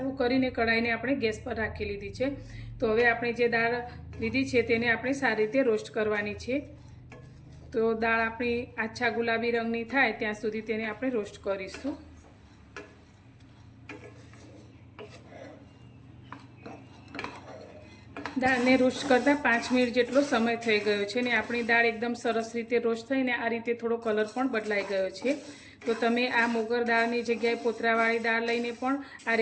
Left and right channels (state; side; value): identical; both; correlation 1.00